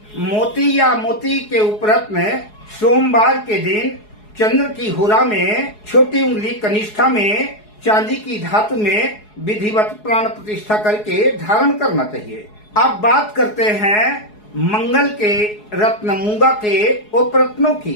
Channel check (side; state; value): right; late; 4.7 ms